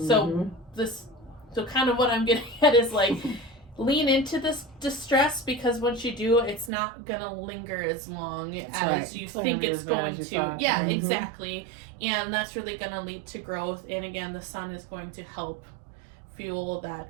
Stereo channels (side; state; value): left; drops out; at 6.7 s